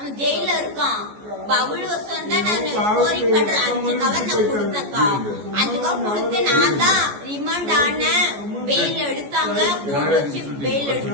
ஜெயில இருக்கான். பபுல் வருஷம் தான் நான் ஸ்கோரிங் பண்றேன். 5 கவர் நான் கொடுத்தேன்க்கா. 5 கவர் கொடுத்து நான் தான் ரிமாண்ட் ஆனேன். பெயில் எடுத்தாங்க, போட்டு வச்சு பெயில்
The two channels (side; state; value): left; late; 14 ms